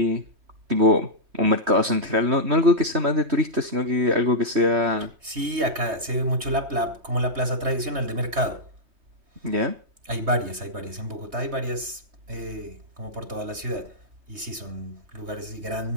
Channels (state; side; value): late; left; 3.2 ms